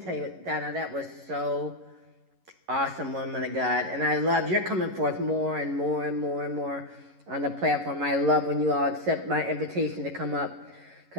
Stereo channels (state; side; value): late; left; 11 ms